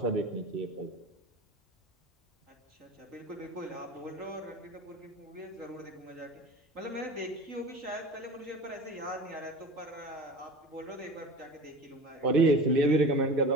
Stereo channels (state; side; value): normal; both; correlation 0.34